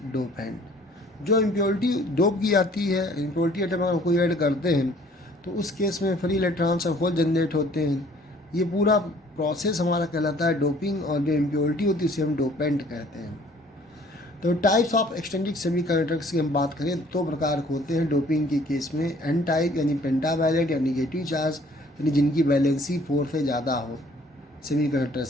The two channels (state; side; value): normal; both; correlation 0.57